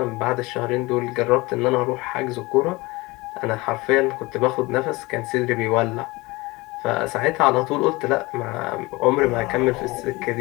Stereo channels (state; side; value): quieter; right; 22.7 dB